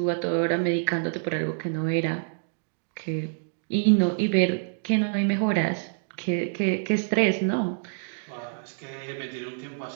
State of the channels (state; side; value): silent; left; digital silence